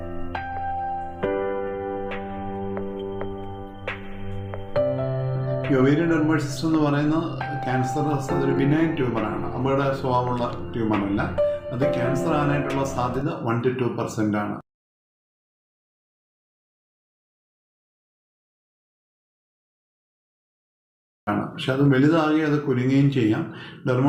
ഈ ഒവേരിയൻ ഡെർമോയിഡ് സിസ്റ്റ് എന്ന് പറയുന്ന ക്യാൻസർ അതൊരു ബിനൈൻ ട്യൂമറാണ്, അപകട സ്വഭാവമുള്ള ട്യൂമറല്ല. അത് ക്യാൻസർ ആകാനായിട്ടുള്ള സാധ്യത 1 to 2% ആണ്. പക്ഷെ അത് വലുതാകി അത് കുലുങ്ങുകയും ചെയ്യാം.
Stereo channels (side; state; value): both; identical; correlation 1.00